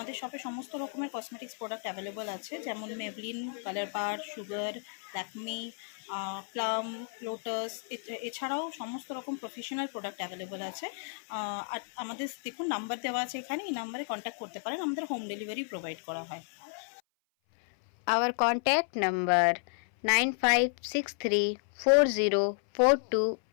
শপে সমস্ত রকমের কসমেটিক্স প্রোডাক্ট অ্যাভেলেবল আছে, যেমন মেবলিন, কালার বার, সুগার, ল্যাকমি, প্লাম, লোটাস, এছাড়াও সমস্ত রকম প্রফেশনাল প্রোডাক্ট অ্যাভেলেবল আছে। আর আমাদের দেখুন নাম্বার দেওয়া আছে এখানে, এই নাম্বারে কন্ট্যাক্ট করতে পারেন। আমাদের হোম ডেলিভারি প্রোভাইড করা হয়। Our contact number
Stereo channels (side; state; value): right; silent; 56 dB below the other